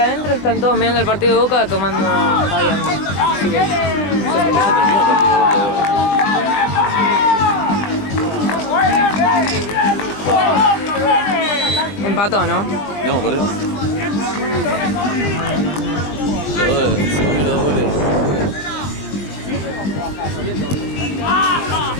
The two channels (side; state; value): right; late; 20 ms